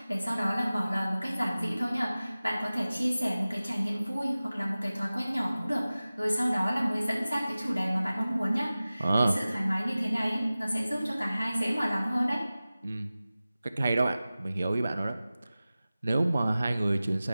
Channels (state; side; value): inverted; both; correlation -0.96